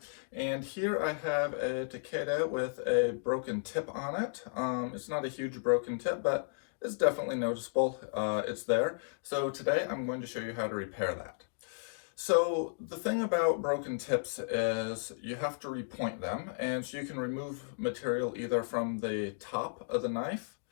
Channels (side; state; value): right; silent; digital silence